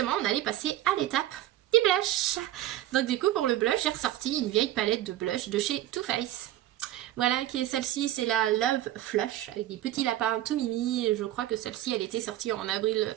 on allait passer à l'étape des blushs. Donc du coup pour le blush, j'ai ressorti une vieille palette de blush de chez Too Faced. Voilà, qui est celle-ci, c'est la Love Flush, avec des petits lapins tout mimi. Je crois que celle-ci, elle était sortie en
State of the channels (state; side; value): quieter; left; 13.8 dB